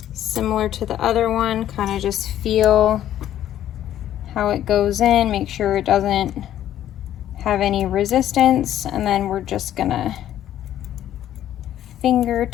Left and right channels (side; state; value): right; quieter; 11.7 dB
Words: Similar to the other one, kind of just feel how it goes in, make sure it doesn't have any resistance, and then we're just gonna finger